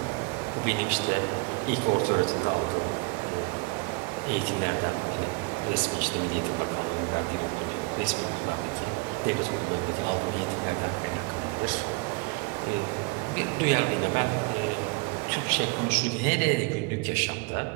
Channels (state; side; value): quieter; left; 29.0 dB